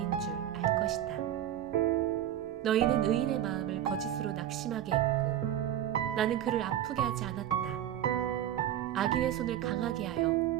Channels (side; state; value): left; quieter; 11.4 dB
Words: 줄 알 것이다. 너희는 의인의 마음을 거짓으로 낙심하게 했고 나는 그를 아프게 하지 않았다. 악인의 손을 강하게 하여